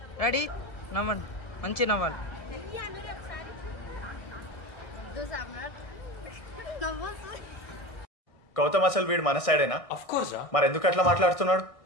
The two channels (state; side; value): late; right; 1.6 ms